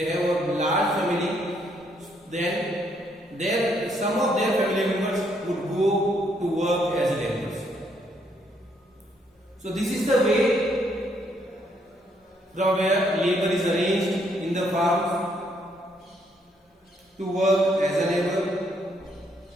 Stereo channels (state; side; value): normal; both; correlation 0.71